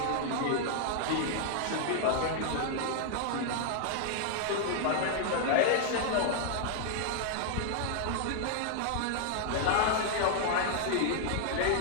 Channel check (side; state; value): both; different; correlation -0.01